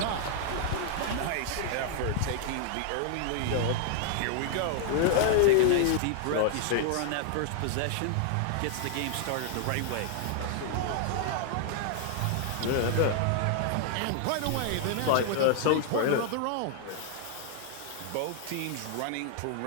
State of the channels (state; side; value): different; both; correlation 0.00